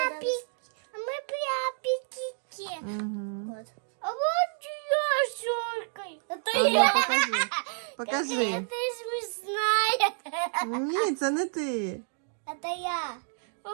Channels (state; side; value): silent; left; 58 dB below the other